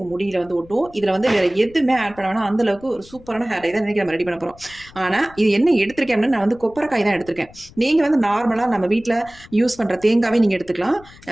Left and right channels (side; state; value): left; noise; rumble, 23 dB below the sound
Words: முடியில் வந்து ஒட்டும். இதில் வந்து வேறு எதுவுமே ஆட் பண்ண வேணாம். அந்தளவுக்கு ஒரு சூப்பரான ஹேர் டை தான் இன்றைக்கி நம்ம ரெடி பண்ண போகிறோம். ஆனால் இது என்ன எடுத்திருக்கேன் அப்படின்னா, நான் வந்து கொப்பரைக்காய் தான் எடுத்திருக்கேன். நீங்கள் வந்து நார்மலாக நம்ம வீட்டில் யூஸ் பண்ணுற தேங்காவே நீங்கள் எடுத்துக்கலாம்.